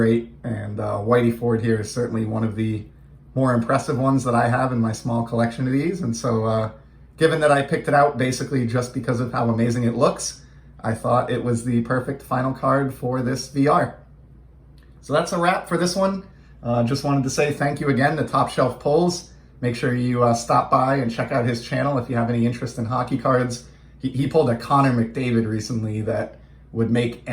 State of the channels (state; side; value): identical; both; correlation 1.00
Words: And Willy Ford here is certainly one of the more impressive ones that I have in my small collection of these. And so given that I picked it out basically just because of how amazing it looks, I thought it was the perfect final card for this VR. So that's a wrap for this one. Just wanted to say thank you again to TopShelfPullz. Make sure you stop by and check out his channel if you have any interest in hockey cards. He pulled a Connor McDavid recently that would make